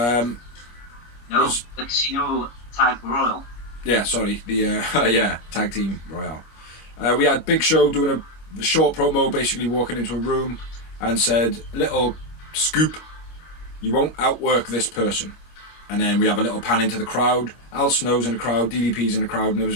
Casino Tag Royal. Yeah, sorry, the Tag Team Royale. We had Big Show doing a short promo, basically walking into a room and said, little scoop, you won't outwork this person. And then we have a little pan into the crowd. Al Snow's in the crowd, DDP's in the crowd, and there was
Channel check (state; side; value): late; right; 25 ms